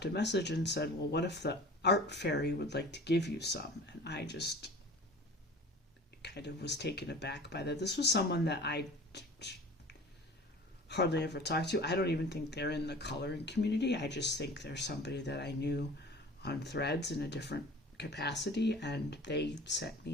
a message and said, well, what if the art fairy would like to give you some? And I just kind of was taken aback by that. This was someone that I hardly ever talked to. I don't even think they're in the coloring community. I just think they're somebody that I knew on Threads in a different capacity, and they sent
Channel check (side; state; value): both; normal; correlation 0.42